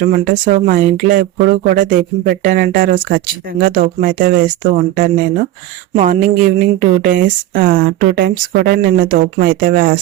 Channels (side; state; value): left; quieter; 14.2 dB